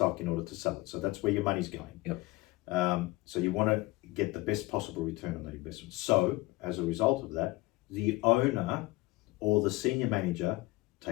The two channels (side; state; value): right; quieter; 20.6 dB